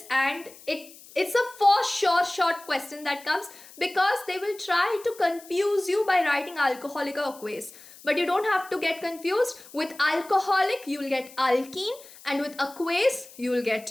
and it's a for sure short question that comes, because they will try to confuse you by writing alcoholic or aqueous. But you don't have to get confused. With alcoholic, you will get alkene, and with aqueous, you will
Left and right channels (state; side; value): noise; left; hiss, 20 dB below the sound